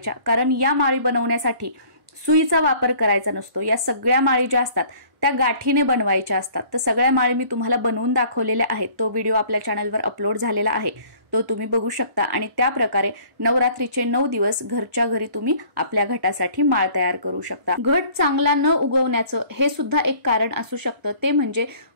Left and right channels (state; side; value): late; left; 1.0 ms